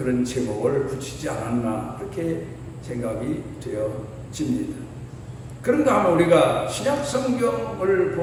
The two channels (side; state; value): both; identical; correlation 1.00